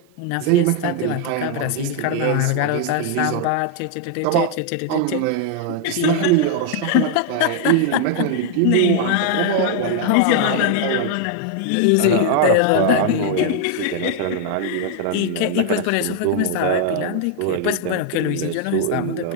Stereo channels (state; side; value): different; both; correlation 0.00